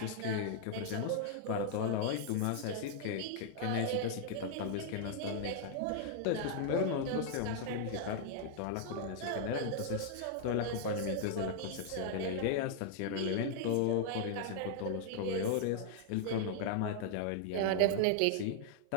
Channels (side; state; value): both; different; correlation -0.01